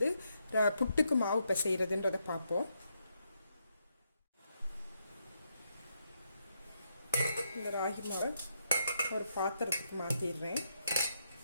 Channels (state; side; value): inverted; both; correlation -0.79